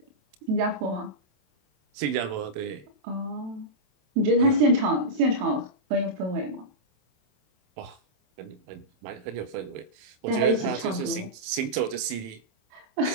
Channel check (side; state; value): left; late; 27 ms